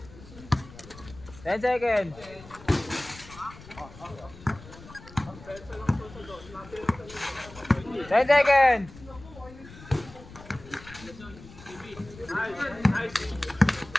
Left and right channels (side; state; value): left; noise; rumble, 18 dB below the sound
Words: 10 seconds. 10 seconds.